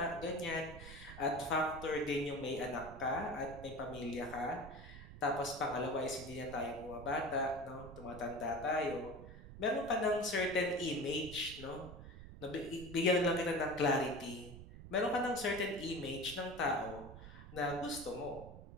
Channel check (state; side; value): noise; right; rumble, 14 dB below the sound